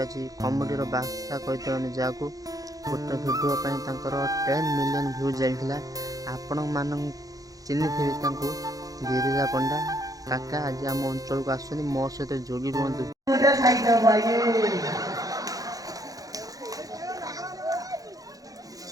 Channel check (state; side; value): late; left; 0.17 ms